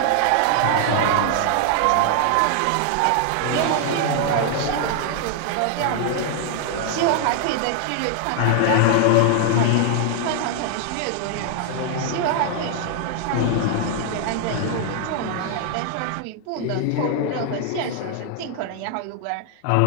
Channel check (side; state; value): both; different; correlation 0.00